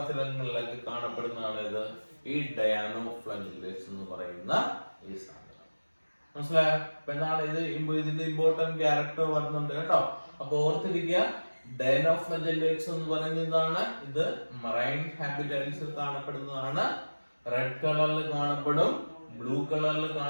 കാണപ്പെടുന്നതാണ് ഇത്, ഈ ഡയാനോഫ്ലജല്ലേറ്റ്സ് എന്ന് പറയുന്ന ഈ സാധനം. മനസ്സിലായോ? അപ്പൊ എന്താണ് ഇത്? ഇതിന്റെ ഇമ്പോർട്ടന്റ് ക്യാരക്ടർ വരുന്നുണ്ട് കേട്ടോ. അപ്പൊ ഓർത്തിരിക്കുക, ഡയാനോഫ്ലജല്ലേറ്റ്സ് എന്ന് പറയുന്നതാണ് ഇത് മറൈൻ ഹാബിറ്റാറ്റ്സിൽ കാണപ്പെടുന്നതാണ്. റെഡ് കളറിൽ കാണപ്പെടും, ബ്ലൂ കളറിൽ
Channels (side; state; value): both; inverted; correlation -1.00